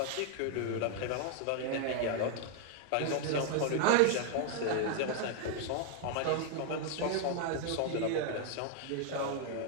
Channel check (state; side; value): different; both; correlation 0.00